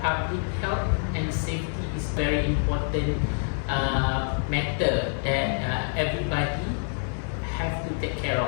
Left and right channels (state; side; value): silent; right; 56 dB below the other